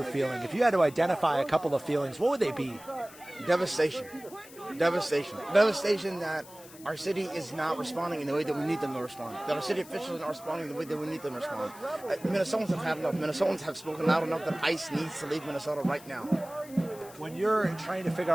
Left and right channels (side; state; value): left; noise; hiss, 20 dB below the sound